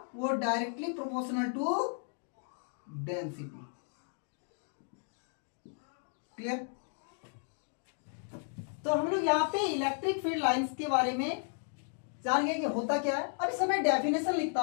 वो directly proportional to density. Clear? तो हम लोग यहाँ पे इलेक्ट्रिक फील्ड लाइंस के बारे में जान गए कि होता क्या है। अब इस समय डेफिनेशन लिखता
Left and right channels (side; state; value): right; silent; 55 dB below the other